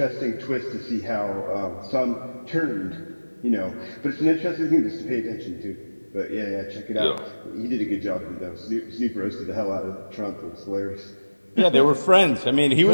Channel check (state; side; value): inverted; both; correlation -1.00